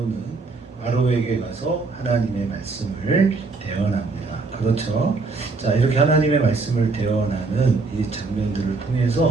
바로에게 가서 하나님의 말씀을 대언합니다. 그렇죠? 자, 이렇게 하나님의 말씀을 대언하는 이 장면들을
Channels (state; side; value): quieter; left; 3.9 dB